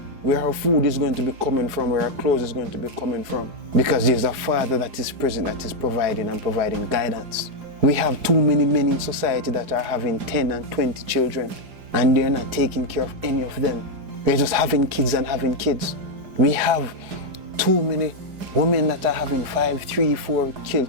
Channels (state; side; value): late; left; 4.9 ms